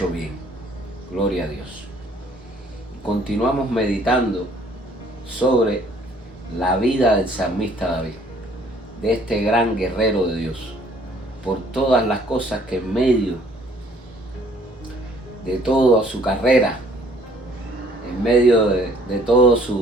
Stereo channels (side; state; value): both; normal; correlation 0.59